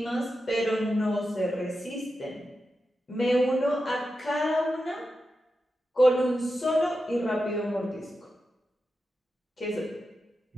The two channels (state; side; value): normal; both; correlation 0.90